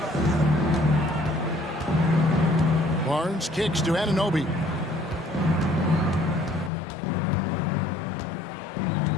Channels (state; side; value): drops out; right; at 6.7 s